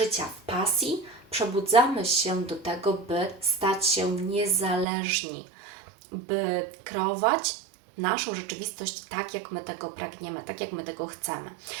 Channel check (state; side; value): drops out; left; at 4.9 s